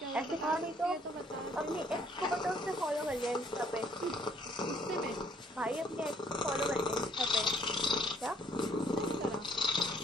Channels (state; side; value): normal; both; correlation 0.63